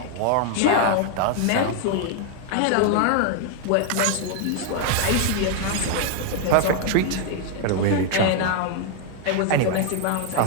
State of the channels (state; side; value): different; both; correlation 0.00